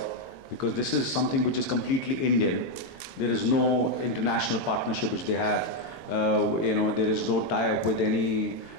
because this is something which is completely Indian. There is no international partnership which they have. There is no tie-up with any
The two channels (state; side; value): late; right; 22 ms